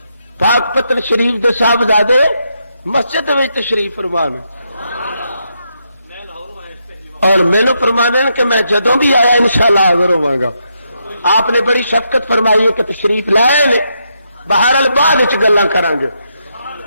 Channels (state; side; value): inverted; both; correlation -0.80